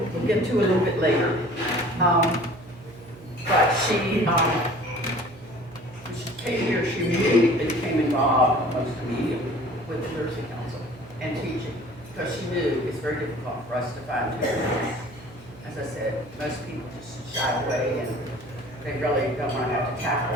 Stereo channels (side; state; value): right; noise; hum, 19 dB below the sound